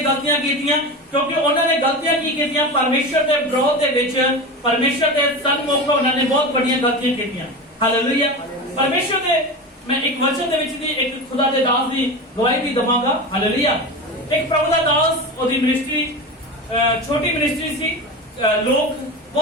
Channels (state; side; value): normal; both; correlation 0.25